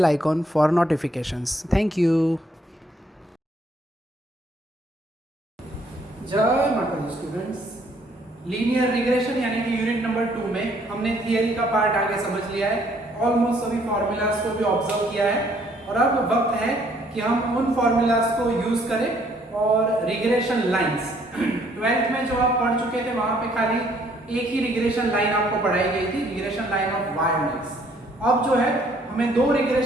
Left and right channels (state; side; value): normal; both; correlation 0.64